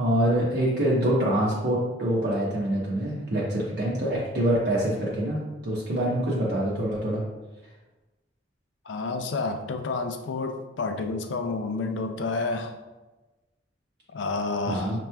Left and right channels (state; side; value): normal; both; correlation 0.43